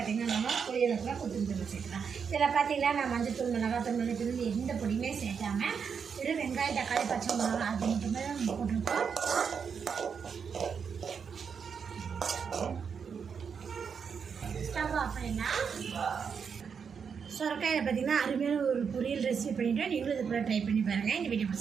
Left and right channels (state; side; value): quieter; left; 6.5 dB